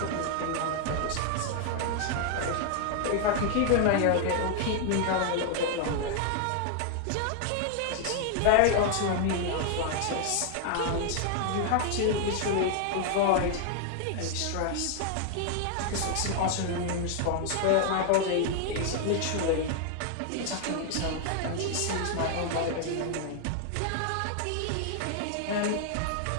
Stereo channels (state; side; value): different; both; correlation 0.00